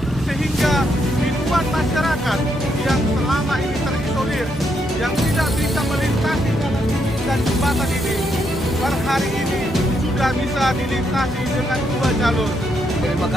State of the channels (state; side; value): normal; both; correlation 0.77